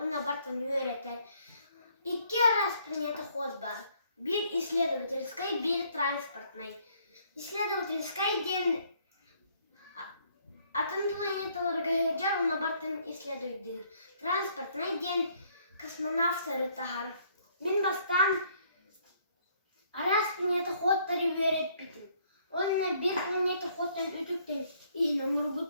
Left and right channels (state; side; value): inverted; both; correlation -0.65